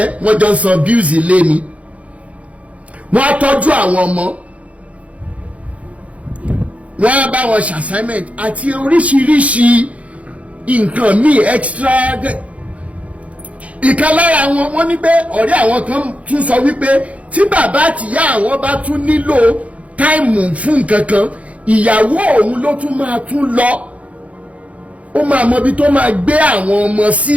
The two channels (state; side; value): late; left; 0.065 ms